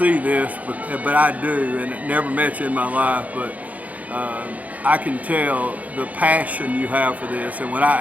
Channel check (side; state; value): left; late; 0.074 ms